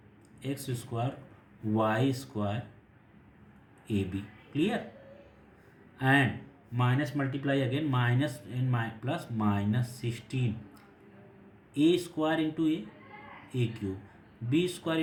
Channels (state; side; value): identical; both; correlation 1.00